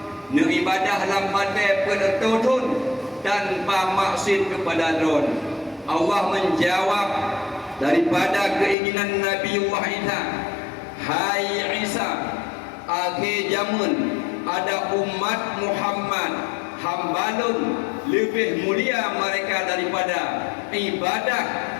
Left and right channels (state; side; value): drops out; right; at 8.8 s